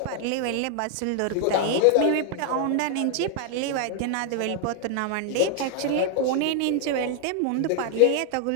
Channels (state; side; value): different; both; correlation 0.00